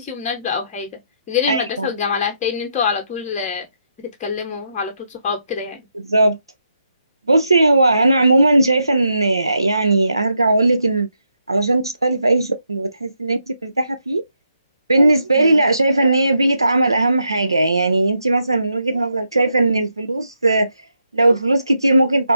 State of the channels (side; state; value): both; inverted; correlation -0.81